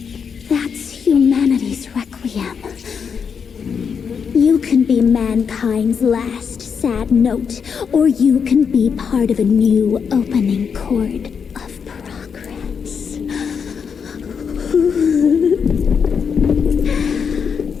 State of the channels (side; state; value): right; quieter; 6.5 dB